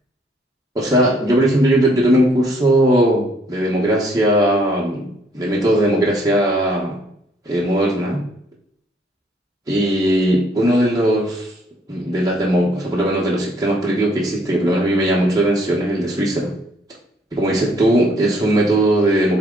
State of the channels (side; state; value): both; normal; correlation 0.65